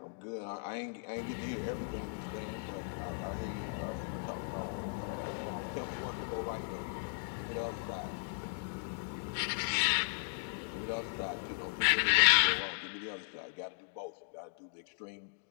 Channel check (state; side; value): silent; right; digital silence